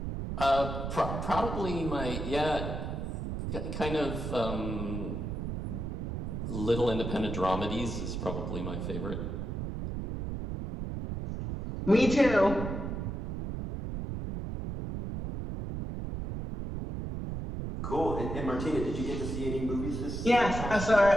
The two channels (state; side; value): noise; right; rumble, 4 dB below the sound